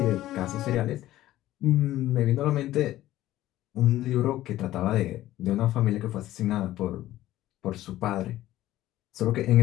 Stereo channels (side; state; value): right; quieter; 14.7 dB